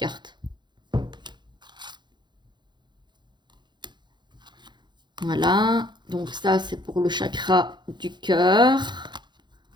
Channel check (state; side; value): late; left; 0.21 ms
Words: Voilà, donc ça c'est pour le chakra du cœur.